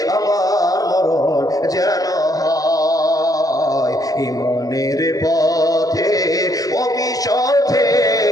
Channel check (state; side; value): late; right; 0.17 ms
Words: আমার মরণ যেন হয়, ইমানের পথে অবিচল